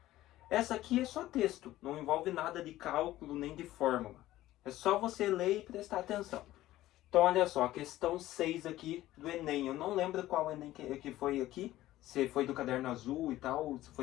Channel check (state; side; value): quieter; right; 15.3 dB